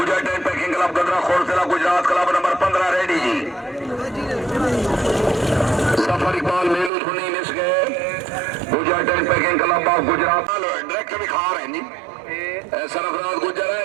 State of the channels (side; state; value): left; drops out; at 6.9 s